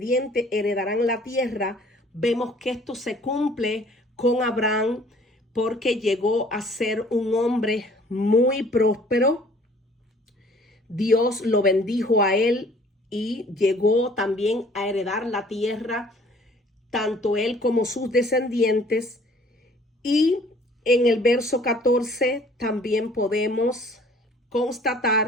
heredarán la tierra. Vemos que esto se cumple con Abraham porque llegó a ser un hombre muy próspero. Dios lo bendijo a él y llegó también a heredar la tierra, tanto él como sus descendientes. Y en el verso 14 también podemos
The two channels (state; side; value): normal; both; correlation 0.55